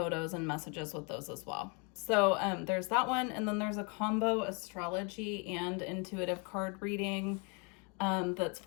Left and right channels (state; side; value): quieter; right; 34.2 dB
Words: and messages with those as well. So there's that one, and then there's a combo astrology and intuitive card reading. That's